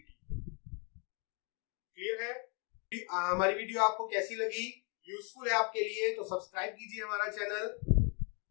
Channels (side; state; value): right; quieter; 36.9 dB